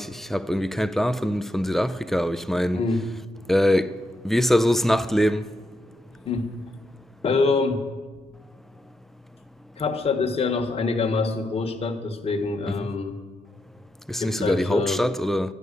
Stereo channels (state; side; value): normal; both; correlation 0.83